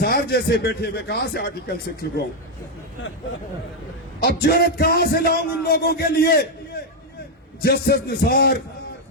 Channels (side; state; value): both; normal; correlation 0.02